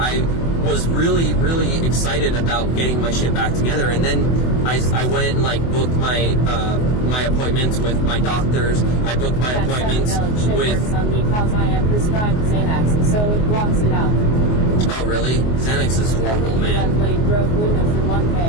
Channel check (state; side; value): late; right; 24 ms